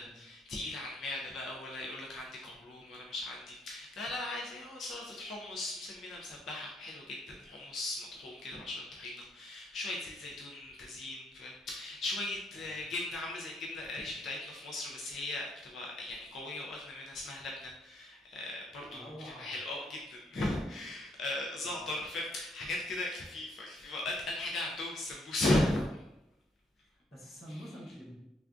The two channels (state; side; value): normal; both; correlation 0.70